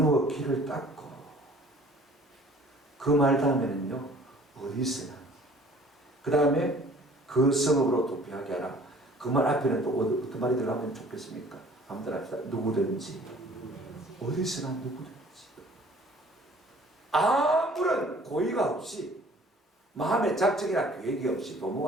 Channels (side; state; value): both; normal; correlation 0.52